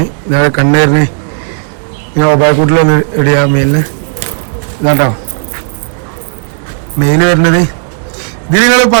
ഇതാണ് കണ്ണേറിന് ഇങ്ങനെ ഒബായക്കൂട്ടിലൊന്ന് ഇടിയാ മെയിലിന്. ഇതാട്ടോ മെയില് വരുന്നത്. ഇത് നിങ്ങൾ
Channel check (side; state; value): left; silent; digital silence